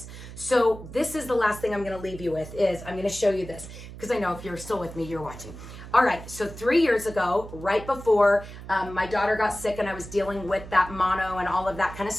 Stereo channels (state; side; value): noise; right; hum, 13 dB below the sound